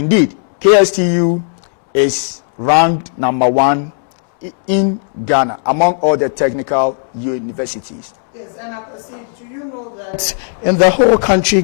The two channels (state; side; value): silent; right; 70 dB below the other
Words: KSTU is ranked #1 in Ghana among all the technical universities. Yes, and do you know that in the whole country,